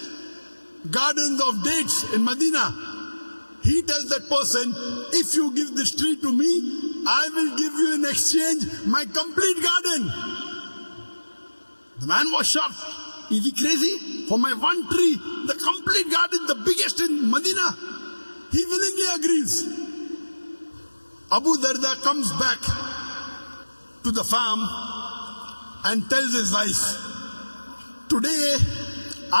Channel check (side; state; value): both; inverted; correlation -1.00